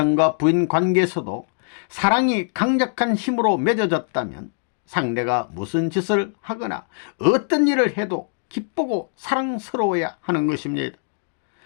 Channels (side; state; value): right; silent; digital silence